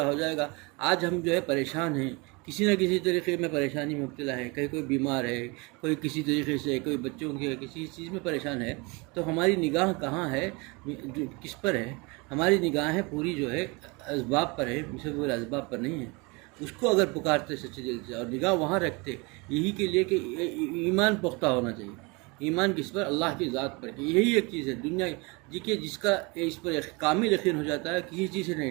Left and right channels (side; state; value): left; quieter; 27.9 dB